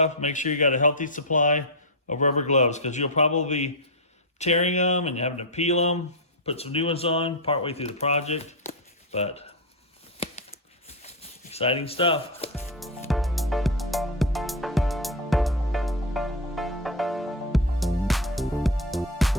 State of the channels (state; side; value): normal; both; correlation 0.08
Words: make sure you got a healthy supply of rubber gloves, because you'll probably be tearing them and having to peel them, put some new ones on partway through the project. But exciting stuff.